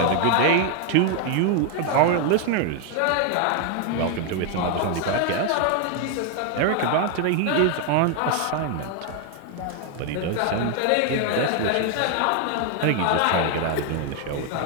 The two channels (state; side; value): different; both; correlation 0.01